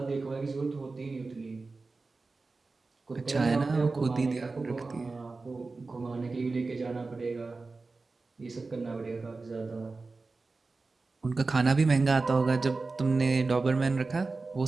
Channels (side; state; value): left; quieter; 3.8 dB